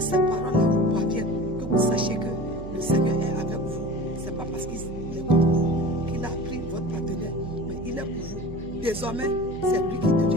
ces paroles-là vous parviennent, que vous sachiez que le Seigneur est avec vous. Ce n'est pas parce qu'il est contre vous qu'il a pris votre partenaire, mais il est pour vous. Désormais, c'est lui qui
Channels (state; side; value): noise; right; hum, 12 dB below the sound